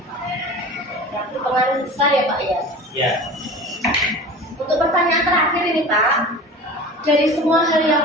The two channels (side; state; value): both; normal; correlation 0.36